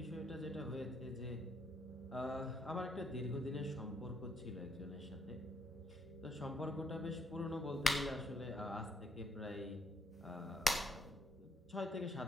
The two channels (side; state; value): both; normal; correlation 0.71